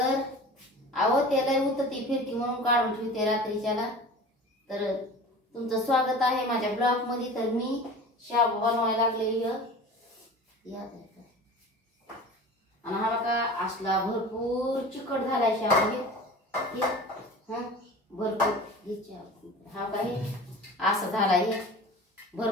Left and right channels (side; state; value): both; normal; correlation 0.38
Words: अहो त्याला उतती फिरती म्हणून काढून ठेवते रात्रीच्याला। तर तुमचं स्वागत आहे माझ्या ब्लॉग मध्ये। तर मी शाबू बनवायला लागले या आणि हा बघा असला भरपूर चिकट झालाय शाबू। भरपूर हा काही असं झाला हे